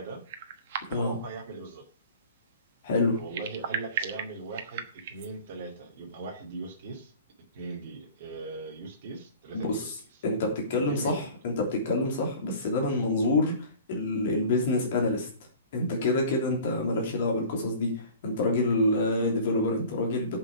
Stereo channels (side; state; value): both; inverted; correlation -0.43